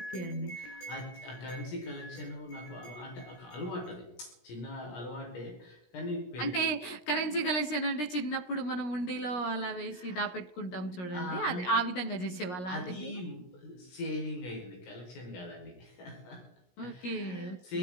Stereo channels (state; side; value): late; right; 17 ms